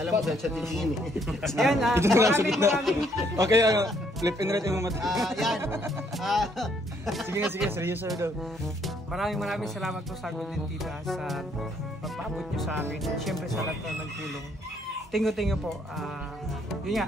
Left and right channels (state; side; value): normal; both; correlation 0.68